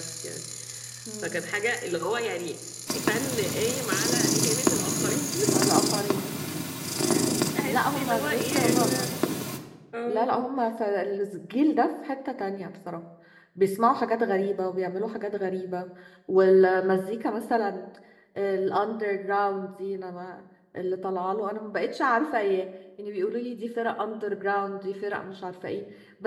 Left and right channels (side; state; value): both; identical; correlation 1.00